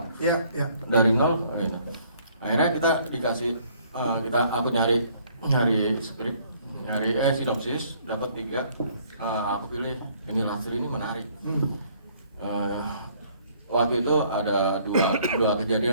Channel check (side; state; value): both; inverted; correlation -0.61